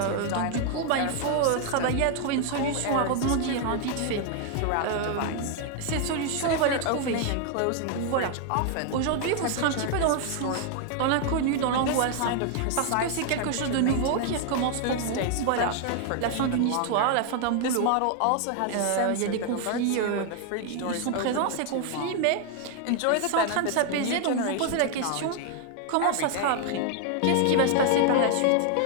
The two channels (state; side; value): different; both; correlation 0.00